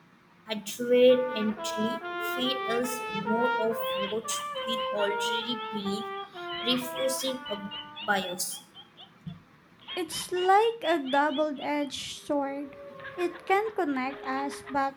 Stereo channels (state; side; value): identical; both; correlation 1.00